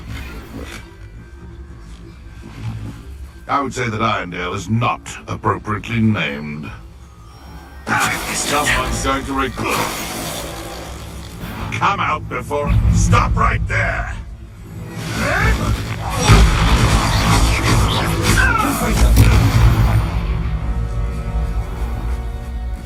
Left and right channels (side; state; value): both; identical; correlation 1.00